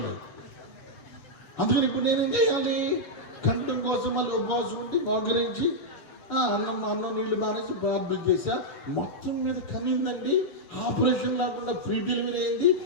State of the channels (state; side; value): late; right; 7.3 ms